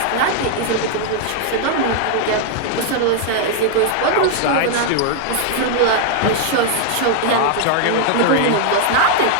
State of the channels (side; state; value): both; different; correlation 0.00